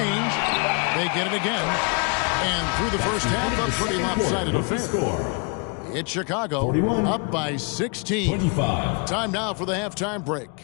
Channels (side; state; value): right; quieter; 35.1 dB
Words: they get it again. And through the first half, a pretty lopsided affair. It's Chicago, up by 16. 25. Time now for the halftime break,